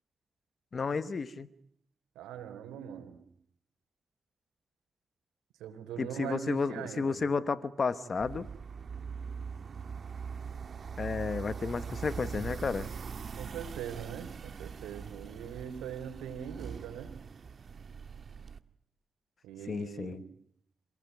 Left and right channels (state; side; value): normal; both; correlation 0.82